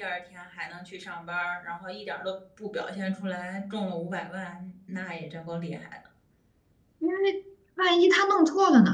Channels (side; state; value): both; identical; correlation 1.00